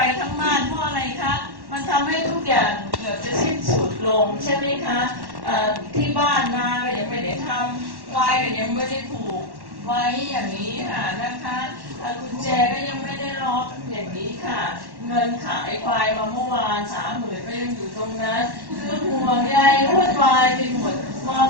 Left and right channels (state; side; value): late; left; 1.1 ms